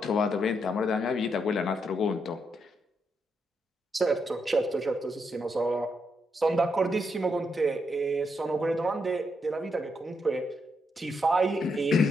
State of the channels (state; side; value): normal; both; correlation 0.80